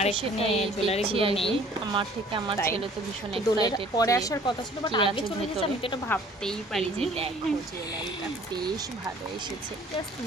এখানে জুয়েলারিগুলো নেই। আমার থেকে আমার ছেলে তো ভীষণ দোলের এক্সাইটেড, পরে আসার কথা ছিল, বাট আগে চলে গেছে। আমি তো এটা ভাবতেই পারি যে দেখো জুয়েলারিটা বেশ ভালো এসেছে। জাস্ট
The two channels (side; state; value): both; normal; correlation 0.53